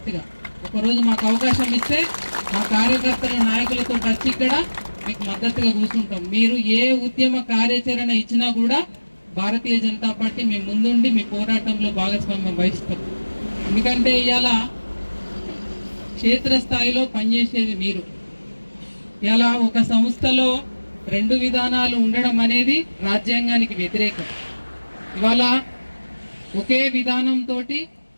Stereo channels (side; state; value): both; inverted; correlation -1.00